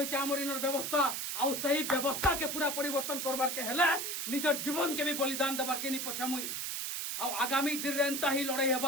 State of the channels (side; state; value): right; noise; hiss, 3 dB below the sound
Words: हमर इनर व्यवस्था आ सही व्यवस्था के पूरा परिवर्तन करबार के हेले निजर जीवन के भी बलिदान देबार के नि पछामुई आ आगामी दिन रे एंता ही लड़ाई